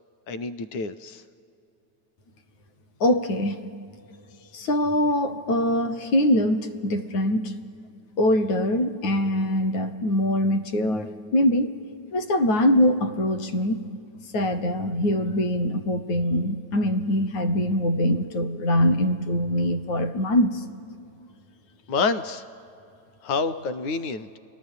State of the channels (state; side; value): late; right; 9.4 ms